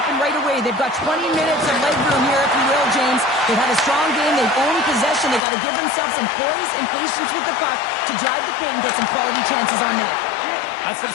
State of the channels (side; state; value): right; drops out; at 5.4 s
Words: right away. They've got 20 minutes of leg room here, if you will, James. They've had a strong game. They've owned possession. They've got to give themselves some poise and patience with the puck to drive the paint and get some quality chances on net. That's